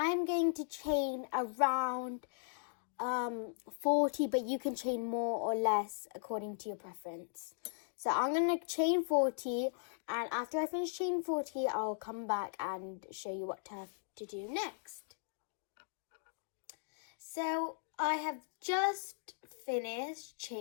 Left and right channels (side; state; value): right; silent; digital silence